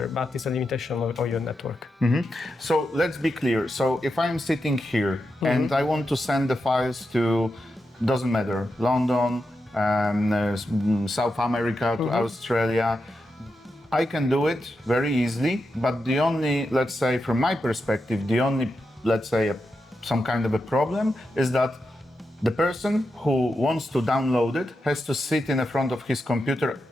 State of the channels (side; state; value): both; normal; correlation 0.87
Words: but it's a limitation of your network. So let's be clear. So if I'm sitting here and I want to send the files to, doesn't matter, London, South America, to Australia, I can do it very easily. But the only, let's say, from my perspective, the only, let's say, some kind of a problem is that the person who wants to download it has to sit in front of his computer